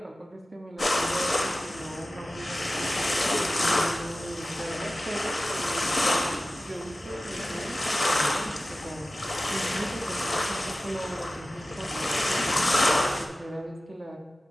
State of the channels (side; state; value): both; normal; correlation 0.96